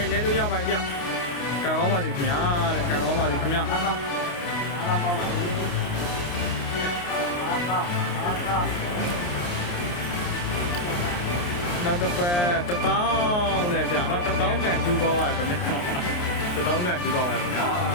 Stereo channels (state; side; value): late; right; 28 ms